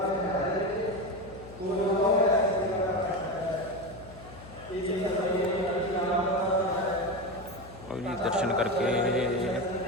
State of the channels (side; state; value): left; noise; hum, 18 dB below the sound